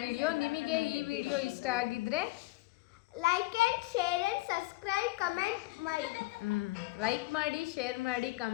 ನಿಮಗೆ ಈ ವಿಡಿಯೋ ಇಷ್ಟ ಆಗಿದ್ರೆ like and share and subscribe comment ಮಾಡಿ. ಲೈಕ್ ಮಾಡಿ, ಶೇರ್ ಮಾಡಿ,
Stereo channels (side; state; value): right; quieter; 20.4 dB